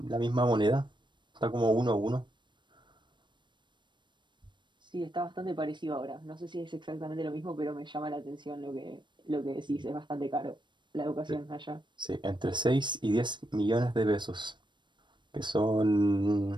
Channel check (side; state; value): left; late; 0.22 ms